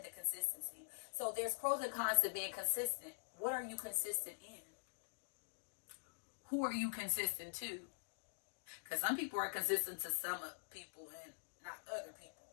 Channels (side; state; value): right; silent; digital silence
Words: the consistency. So, there's pros and cons to being consistent. What are you consistent in? Who are you consistent to? Because some people are consistent to some people and not other people.